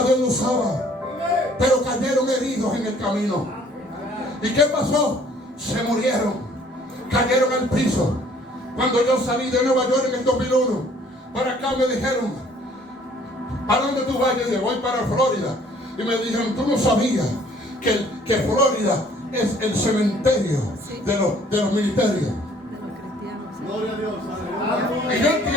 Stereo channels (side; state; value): both; normal; correlation 0.58